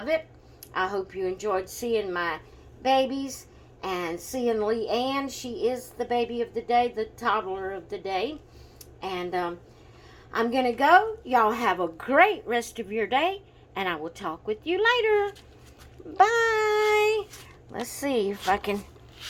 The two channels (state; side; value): identical; both; correlation 1.00